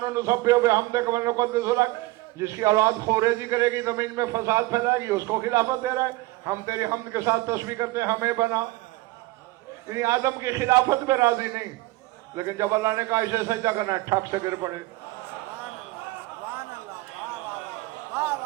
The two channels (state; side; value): quieter; left; 19.8 dB